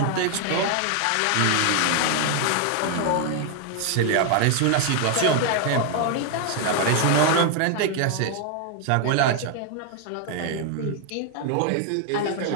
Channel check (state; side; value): different; both; correlation 0.00